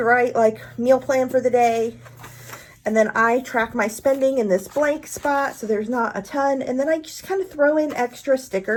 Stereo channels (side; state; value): both; identical; correlation 1.00